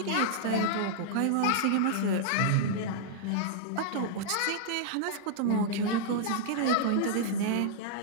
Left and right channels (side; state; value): both; different; correlation -0.01